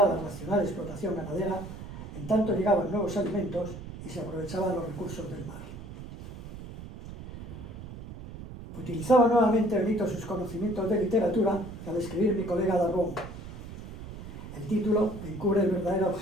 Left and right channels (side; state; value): right; noise; rumble, 12 dB below the sound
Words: la racional explotación ganadera, en tanto llegaban nuevos alimentos y se aprovechaban los recursos del mar. Utilizaba nuevamente Benito sus conocimientos de literatura al escribir Mi colega Darbón. El título encubre el verdadero